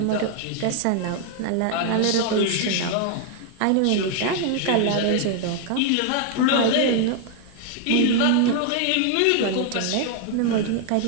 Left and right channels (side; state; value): both; different; correlation 0.00